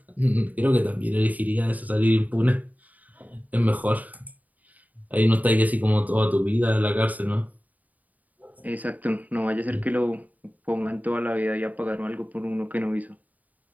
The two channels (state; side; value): late; left; 0.076 ms